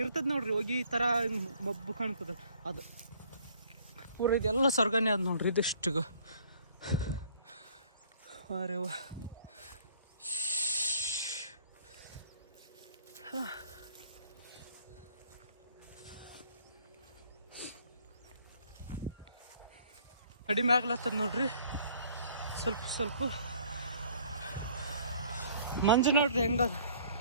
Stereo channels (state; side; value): inverted; both; correlation -0.58